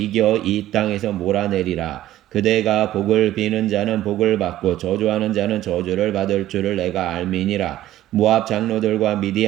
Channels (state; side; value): quieter; left; 13.9 dB